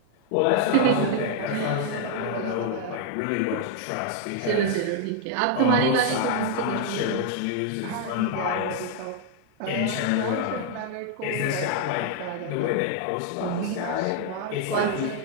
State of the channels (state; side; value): different; both; correlation 0.00